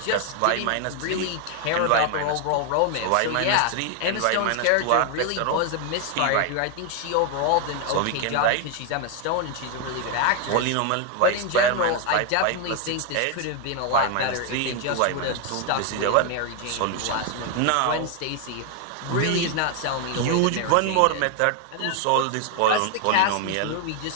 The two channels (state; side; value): different; both; correlation 0.00